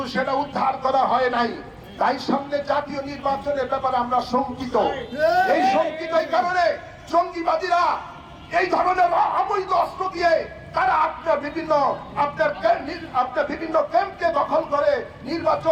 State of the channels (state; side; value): identical; both; correlation 1.00